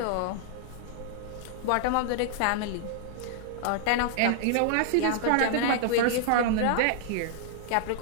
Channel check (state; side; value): different; both; correlation -0.01